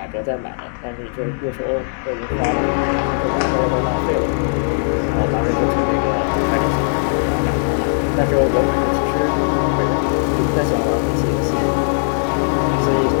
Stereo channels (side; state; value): right; silent; 67 dB below the other